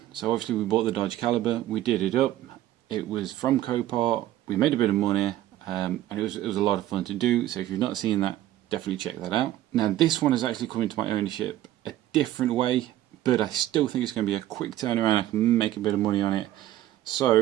so obviously we bought the Dodge Caliber, we did it up, it was from Copart, we made a bit of money, and it was a lot of fun to do, so if you've not seen that, definitely check that out. Now this one has actually come into my ownership a different way, but I still think it's going to be a quick turnaround, I can make a bit of money on it.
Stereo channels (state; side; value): quieter; left; 13.8 dB